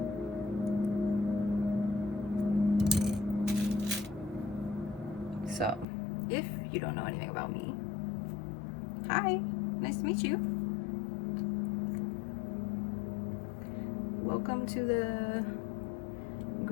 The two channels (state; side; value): drops out; right; at 5.9 s